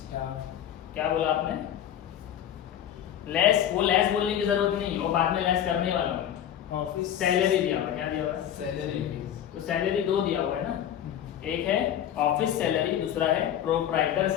क्या बोला आपने, लेस. वो लेस बोलने की जरूरत नहीं, वो बाद में लेस करने वाला हूँ. ऑफिस सैलरी दिया हुआ है, क्या दिया हुआ है, सैलरी. तो सैलरी 2 दिया हुआ है ना. एक है ऑफिस सैलरी, दूसरा है प्रोप्राइटर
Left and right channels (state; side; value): quieter; right; 10.3 dB